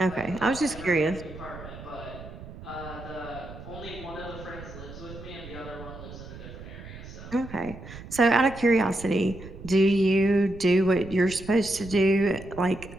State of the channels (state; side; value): noise; right; rumble, 14 dB below the sound